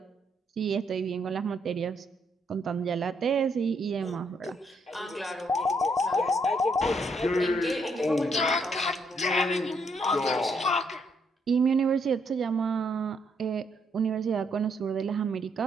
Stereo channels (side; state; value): both; normal; correlation 0.73